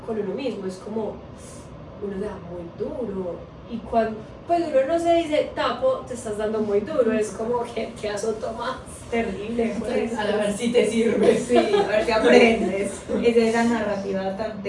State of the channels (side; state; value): both; identical; correlation 1.00